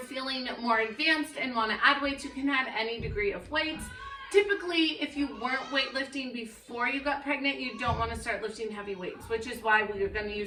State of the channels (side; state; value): both; identical; correlation 1.00